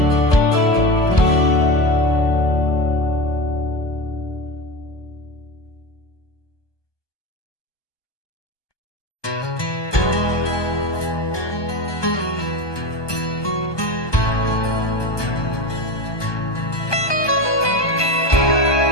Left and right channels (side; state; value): right; late; 1.2 ms